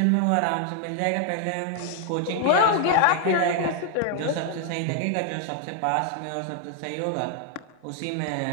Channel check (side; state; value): both; different; correlation 0.00